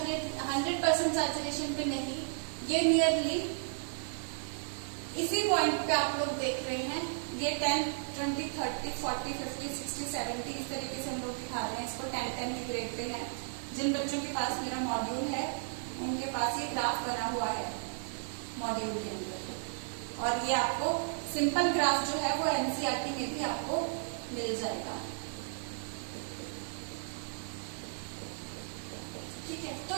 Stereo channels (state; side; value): silent; left; digital silence